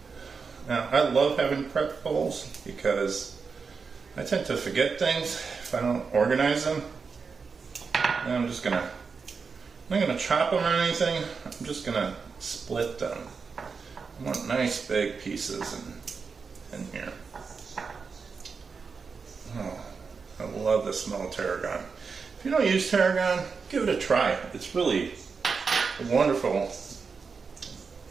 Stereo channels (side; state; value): left; quieter; 5.2 dB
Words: Now, I love having prep bowls because I tend to forget things if I don't organize them. And I'm not gonna chop them or anything. I'm just gonna split them. I want nice big pieces in here. Oh, I love the smell of tarragon. If you don't use tarragon, give it a try. It's really a wonderful